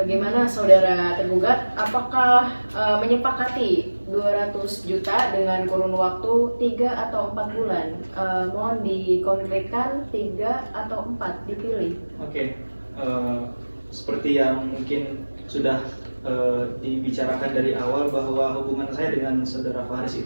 saudara tergugat? Apakah menyepakati 200 juta dengan kurun waktu 3 atau 4 bulan? Mohon dikonkretkan 3 atau 4 dipilih. Oke, seperti yang mungkin sudah dibicarakan dari awal bahwa hubungan saya dengan saudara Faris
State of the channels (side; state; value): both; inverted; correlation -1.00